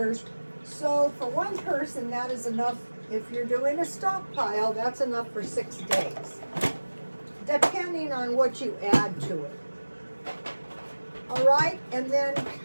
So for one person, that is enough. If you're doing a stockpile, that's enough for 6 days. Depending on what you add to it. All right, and then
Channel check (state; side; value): inverted; both; correlation -1.00